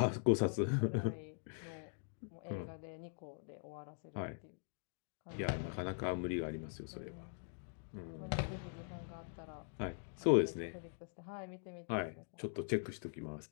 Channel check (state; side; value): silent; right; digital silence